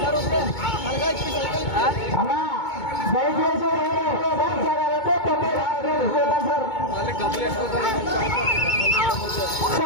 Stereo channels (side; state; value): right; late; 2.2 ms